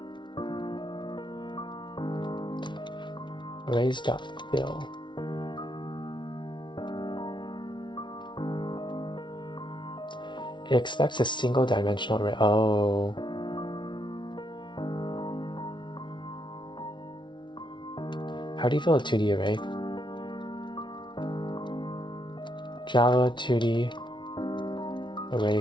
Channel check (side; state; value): right; late; 0.23 ms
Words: Arrays.fill. It expects a single dimensional array. Oh. How do you fill a 2D array? Java 2D array